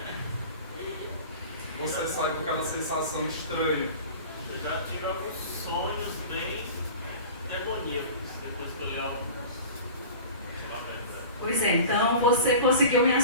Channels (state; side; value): inverted; both; correlation -0.38